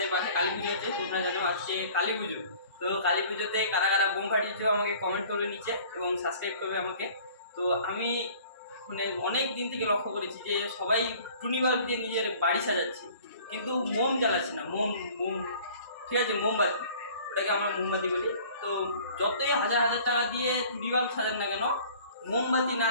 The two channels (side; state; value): both; inverted; correlation -0.50